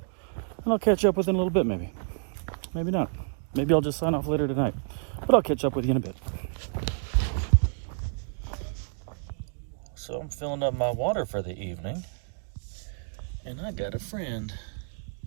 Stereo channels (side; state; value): left; silent; 59 dB below the other